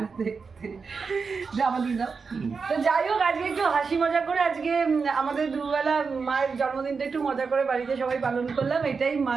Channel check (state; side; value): quieter; left; 5.1 dB